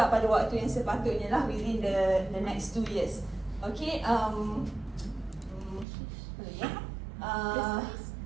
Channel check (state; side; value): drops out; left; at 5.9 s